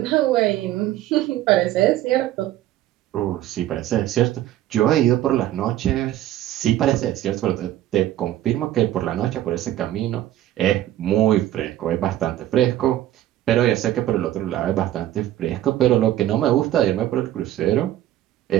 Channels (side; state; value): left; quieter; 13.4 dB